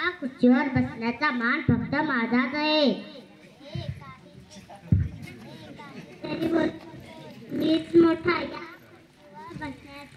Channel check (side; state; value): both; identical; correlation 1.00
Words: खुर्चीवर बसण्याचा मान फक्त माझाच आहे। मीच मोठा, या